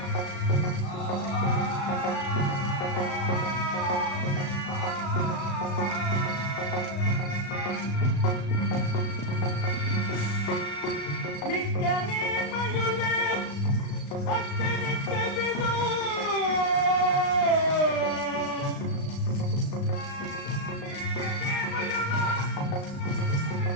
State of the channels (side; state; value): right; late; 36 ms